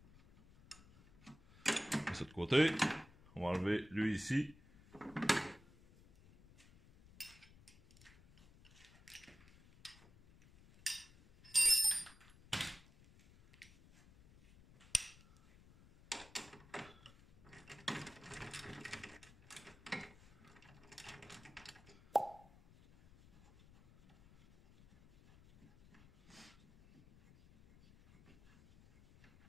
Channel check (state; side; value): noise; left; rumble, 24 dB below the sound